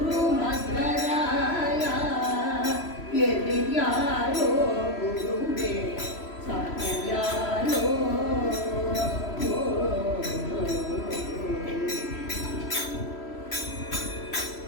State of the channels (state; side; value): late; right; 3.0 ms